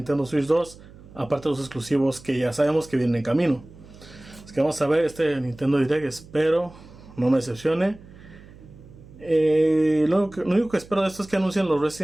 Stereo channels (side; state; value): right; noise; hum, 21 dB below the sound